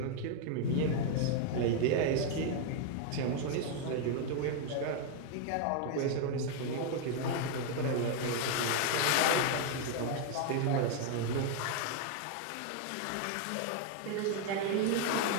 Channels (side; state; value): both; different; correlation 0.00